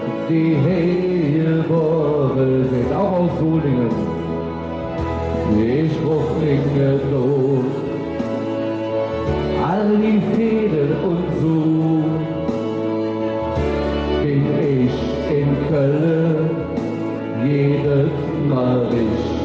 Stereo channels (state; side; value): identical; both; correlation 1.00